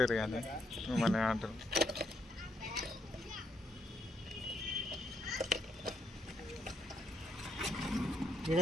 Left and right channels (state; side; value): normal; both; correlation 0.75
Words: కానీ మిమ్మల్ని అంటారు.